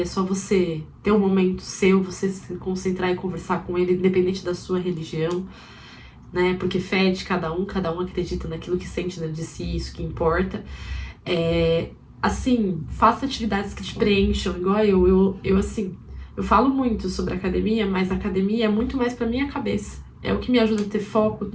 é só você ter um momento seu, você se concentrar e conversar com ele, independente da sua religião, né? Porque fé é de cada um acredita naquilo que sente dentro de si, isso que importa. Assim, faça atividades que te preencham, igual eu assim, eu falo muito sobre academia, mas a academia é muito mais pra minha cabeça. É o que me ajuda a ter foco,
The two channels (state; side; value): identical; both; correlation 1.00